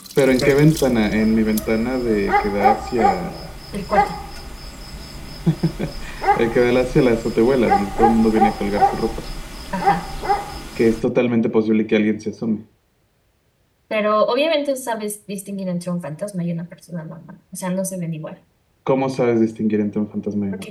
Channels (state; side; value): identical; both; correlation 1.00